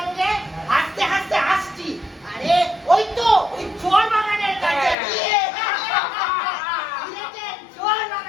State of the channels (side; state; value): right; drops out; at 5.0 s